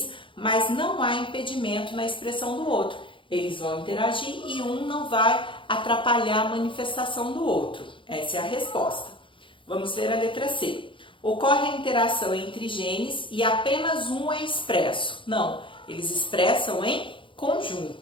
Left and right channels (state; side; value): late; right; 0.25 ms